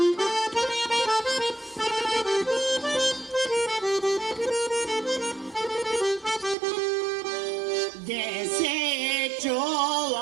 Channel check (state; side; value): drops out; left; at 6.6 s